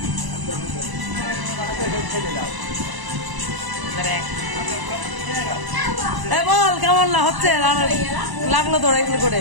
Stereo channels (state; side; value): late; left; 1.0 ms